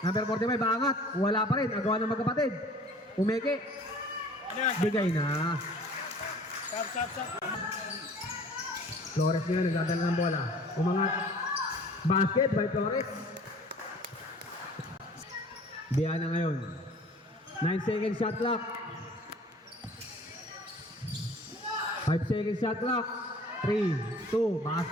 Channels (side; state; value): both; normal; correlation 0.49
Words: Number 45. Baangat. Wala pa rin. Agawa ng magkapatid. Umeke. Ano yan? Bigay na. Sap. Flores ngayon, nagdadala ng bola. Umangat. Basket by Flores. Biana ngayon. 9 seconds shot clock. 5 seconds shot clock. 3, 2,